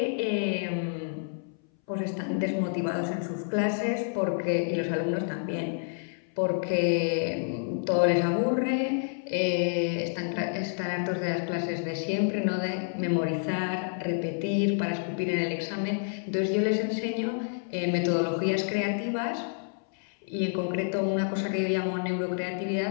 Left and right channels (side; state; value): right; silent; 59 dB below the other